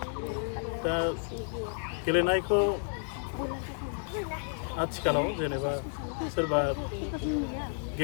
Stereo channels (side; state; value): right; silent; 57 dB below the other